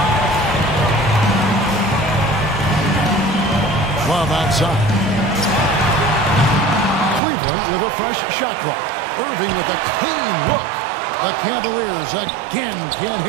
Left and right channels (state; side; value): drops out; left; at 7.2 s